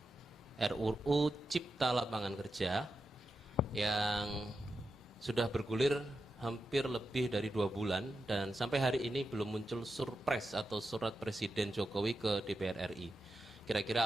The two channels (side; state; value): both; normal; correlation 0.89